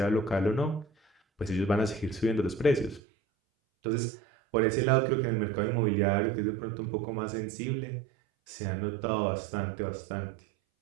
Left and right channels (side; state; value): left; drops out; at 3.0 s